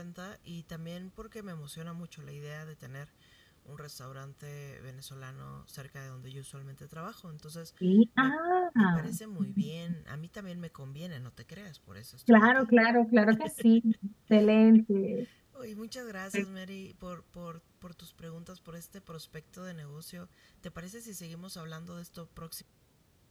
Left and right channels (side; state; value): both; identical; correlation 1.00